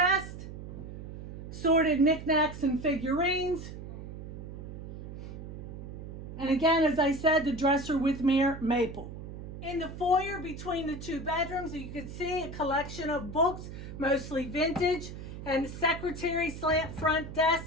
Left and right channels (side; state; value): right; noise; hum, 10 dB below the sound